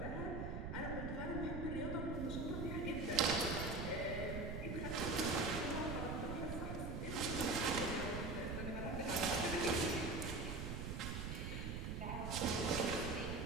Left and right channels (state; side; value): noise; right; rumble, 4 dB below the sound